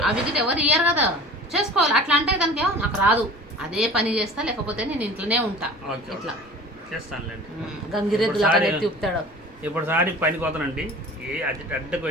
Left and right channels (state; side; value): normal; both; correlation 0.42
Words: అవి ఎవరు ఇయ్యారు కదా. చేసుకోవాలి. అట్లా అంటే కనుక నాకు రాదు, అదే పని చేస్తా, లేకపోతే నేను ఇంట్లోనే ఉంటా. ఇట్లా గంగిరెద్దులు అక్కడ ఎత్తిపుతాడు. ఇప్పుడు సారి పనికి పోతానండి. అడ్డకు